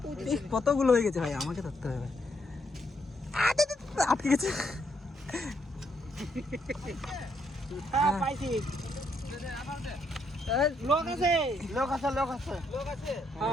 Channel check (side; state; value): both; normal; correlation 0.75